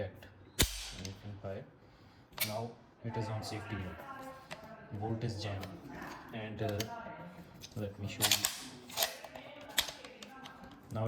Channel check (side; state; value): both; identical; correlation 1.00